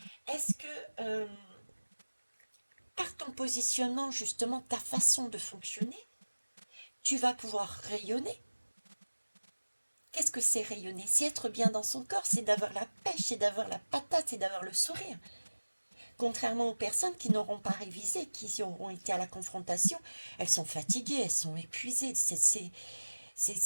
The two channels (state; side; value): inverted; both; correlation -1.00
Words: Est-ce que par ton positionnement, justement, ta façon de fonctionner, tu vas pouvoir rayonner? Qu'est-ce que c'est rayonner? C'est être bien dans son corps, c'est d'avoir la pêche, c'est d'avoir la patate, c'est d'avoir le sourire. Contrairement aux personnes qui n'auront pas révisé, qui auront été à la confrontation, elles sont fatiguées, elles sont épuisées, c'est